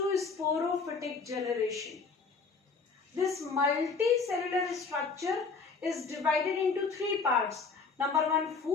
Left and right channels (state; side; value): quieter; right; 4.7 dB